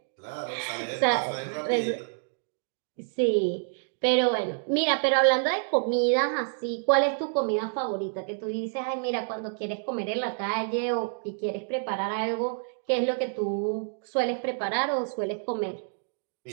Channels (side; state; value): left; silent; digital silence